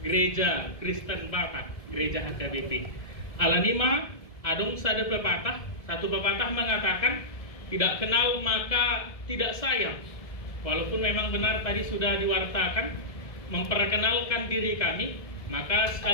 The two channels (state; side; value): late; right; 1.7 ms